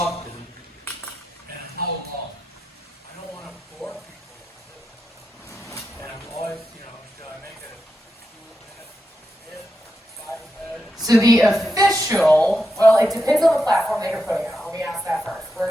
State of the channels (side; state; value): both; normal; correlation 0.87